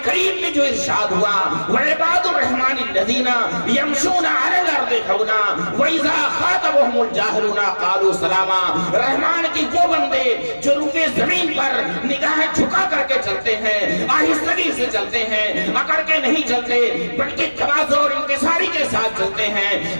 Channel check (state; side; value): inverted; both; correlation -1.00